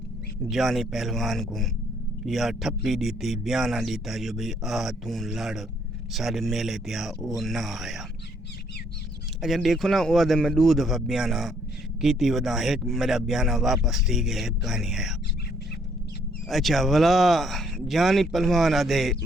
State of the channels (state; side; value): normal; both; correlation 0.67